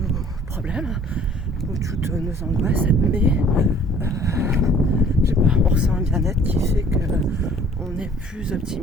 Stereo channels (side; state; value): both; normal; correlation 0.54